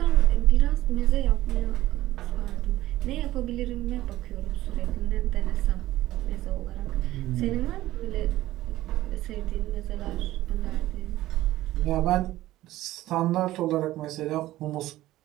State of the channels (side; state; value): left; quieter; 15.8 dB